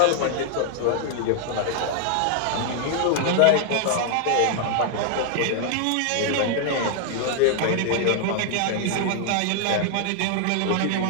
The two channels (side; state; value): both; different; correlation 0.00